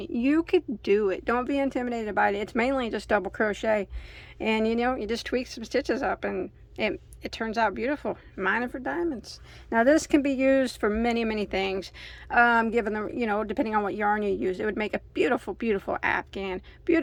you could do it. Don't be intimidated by it. It's mainly just double crochet, and you just tweak some stitches up and it turns out beautiful. Mining for diamonds. Now this can be used for many things, given the depending on what yarn you use. It would make a beautiful afghan,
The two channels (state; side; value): identical; both; correlation 1.00